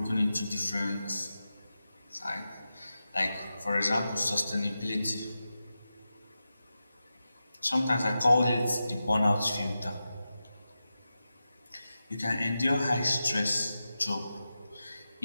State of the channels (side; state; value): both; inverted; correlation -0.92